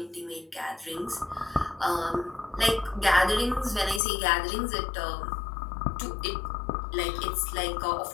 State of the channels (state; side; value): drops out; right; at 4.0 s